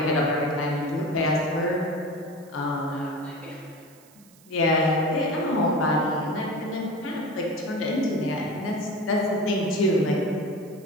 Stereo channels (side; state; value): right; noise; hiss, 27 dB below the sound